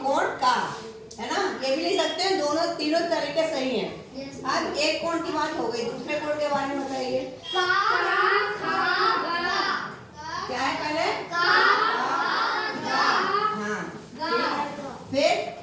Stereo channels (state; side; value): identical; both; correlation 1.00